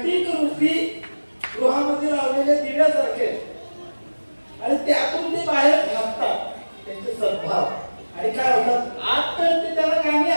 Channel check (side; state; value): both; inverted; correlation -1.00